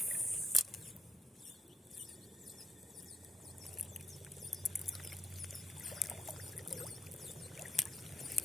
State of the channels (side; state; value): both; normal; correlation 0.76